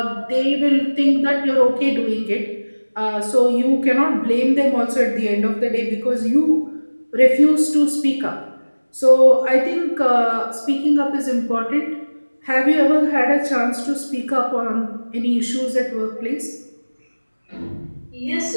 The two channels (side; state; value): both; inverted; correlation -1.00